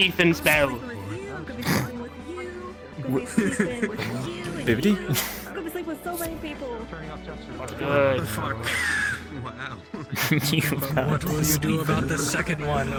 spell. Bibbidi? I'm gonna sleep with so many people. Good. Wow. What will you do about the second one,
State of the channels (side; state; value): both; identical; correlation 1.00